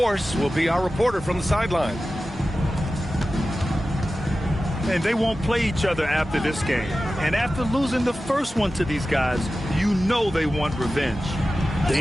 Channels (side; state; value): both; normal; correlation 0.94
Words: will be our reporter from the sideline. And they won't play each other after this game. And after losing the first one to these guys, you know they want revenge.